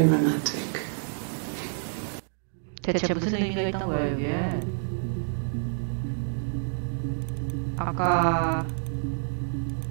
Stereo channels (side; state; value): left; silent; digital silence